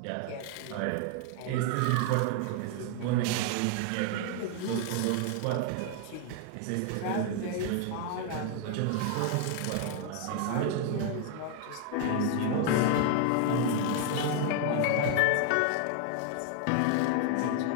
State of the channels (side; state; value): both; different; correlation 0.00